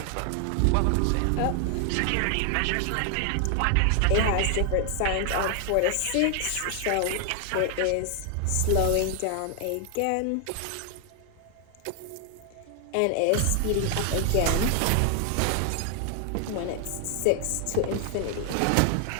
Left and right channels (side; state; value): both; different; correlation 0.00